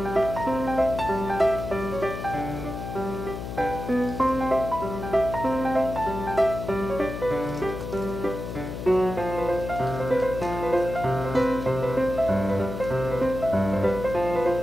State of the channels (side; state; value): left; noise; hum, 7 dB below the sound